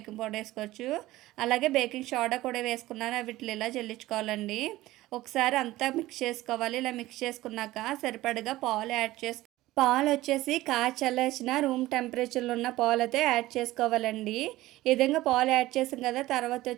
పౌడర్ వేసుకోవచ్చు. అలాగే బేకింగ్ సోడా కూడా వేసుకున్నాను. వీటిని ఇలా జల్లించుకోవాలండి. ఒకసారి అంతా మిక్స్ చేసుకోవాలి. ఇలా మిక్స్ చేసుకున్నాక సరిపడగా పాలు యాడ్ పాలొచ్చేసి చల్లార్చిన రూమ్ టెంపరేచర్‌లో ఉన్న పాలైతే యాడ్ చేసుకోవాలండి. ఈ విధంగా పాలు యాడ్ చేసాం కదా! తర్వాత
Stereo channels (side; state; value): left; quieter; 17.0 dB